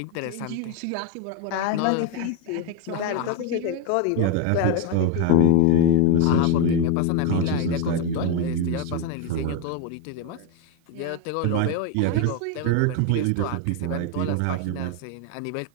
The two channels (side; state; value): both; different; correlation 0.02